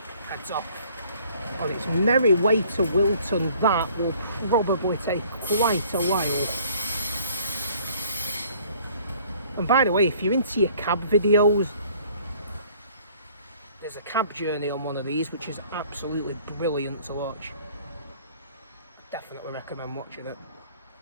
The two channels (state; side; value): inverted; both; correlation -0.56